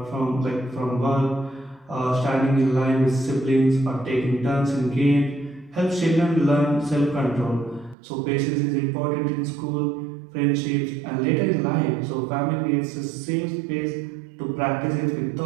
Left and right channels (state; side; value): drops out; left; at 8.0 s